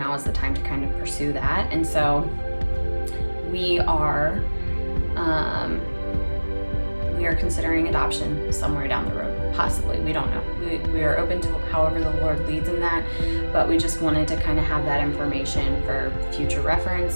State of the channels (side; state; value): both; inverted; correlation -1.00